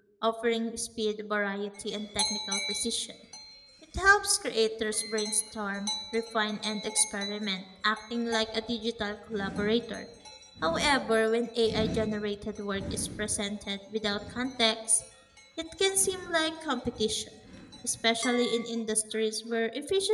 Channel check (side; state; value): both; identical; correlation 1.00